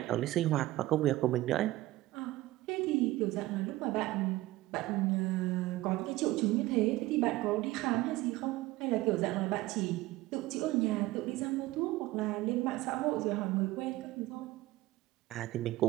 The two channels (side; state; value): left; quieter; 17.6 dB